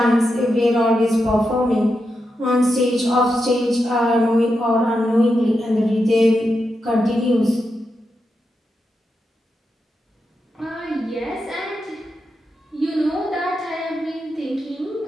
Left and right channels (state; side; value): normal; both; correlation 0.87